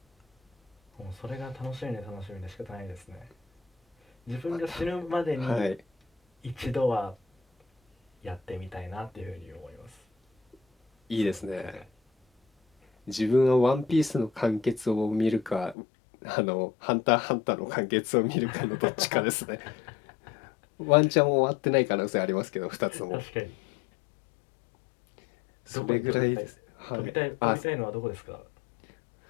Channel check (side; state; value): right; drops out; at 15.8 s